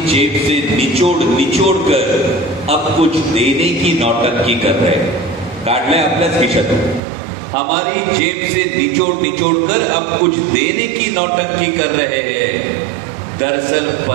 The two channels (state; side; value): drops out; left; at 7.0 s